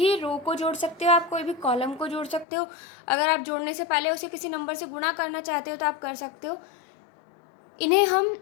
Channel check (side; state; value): right; drops out; at 2.5 s